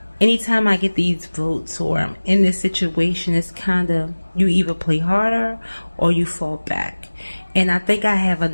anytime I get these votes or I'm in this situation, it's kind of, you either play harder or you fall back. And I think I have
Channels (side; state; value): both; inverted; correlation -1.00